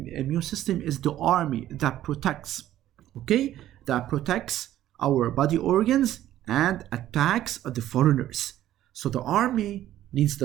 is the army that protects, okay? That protects our body organs and attacks the foreigners. So the army needs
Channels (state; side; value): quieter; left; 13.0 dB